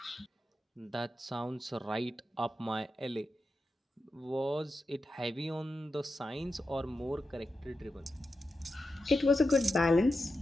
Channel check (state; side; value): normal; both; correlation 0.89